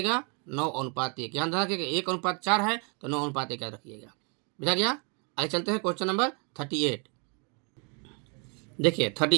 9:1। यहाँ ध्यान रखिएगा 1:4 है तो 9:1 याद रखिएगा। बुझा गया। आगे चलते हैं क्वेश्चन नंबर 38। देखिए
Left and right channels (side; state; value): left; quieter; 35.7 dB